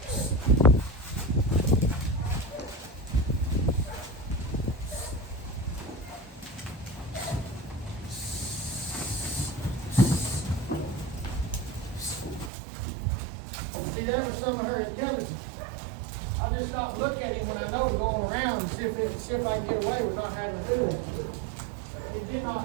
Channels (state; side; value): drops out; left; at 12.5 s